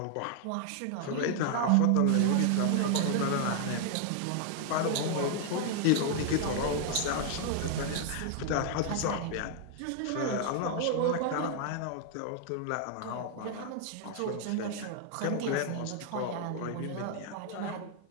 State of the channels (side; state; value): both; different; correlation 0.00